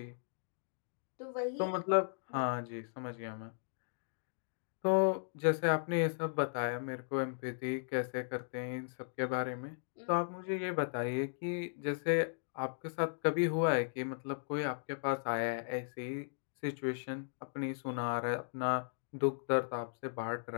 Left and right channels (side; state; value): right; silent; digital silence